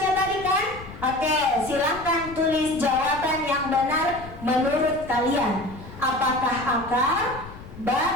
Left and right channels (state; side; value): noise; left; rumble, 15 dB below the sound